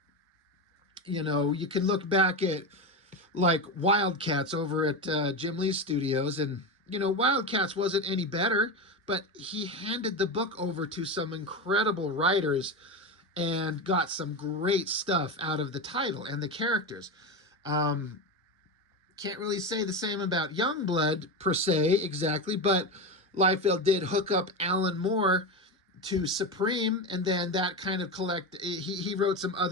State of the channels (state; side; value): normal; both; correlation 0.18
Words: you can look back at, like, Wildcats over at Jim Lee's studios, and Wildcats wasn't any better, but he handed the book over to some incredible writers and got some great stuff out of the title and the characters. Um, can't really say the same about Youngblood per se exactly, but Liefeld did hook up Alan Moore to Supreme, and then that kind of he wrote some